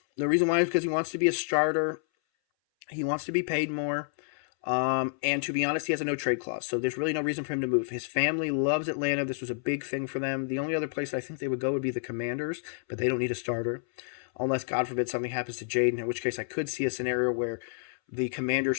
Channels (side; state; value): right; silent; 58 dB below the other